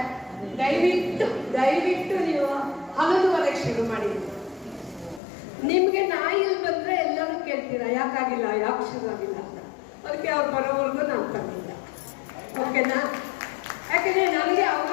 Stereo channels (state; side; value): drops out; right; at 5.2 s